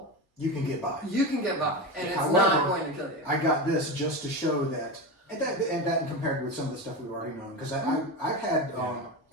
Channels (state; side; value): normal; both; correlation 0.21